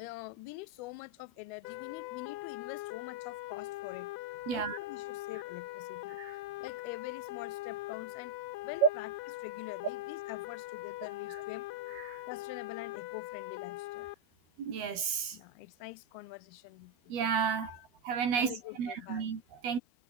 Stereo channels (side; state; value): left; late; 12 ms